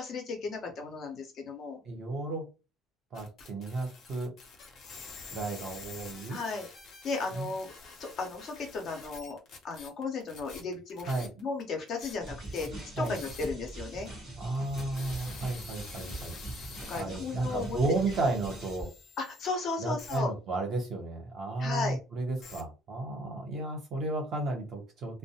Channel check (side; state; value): both; normal; correlation 0.62